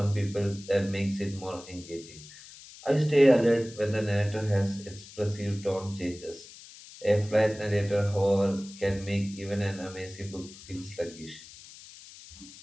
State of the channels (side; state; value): left; noise; hiss, 18 dB below the sound